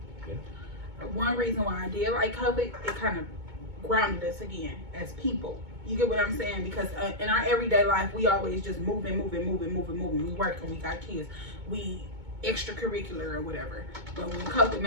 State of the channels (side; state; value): left; late; 2.2 ms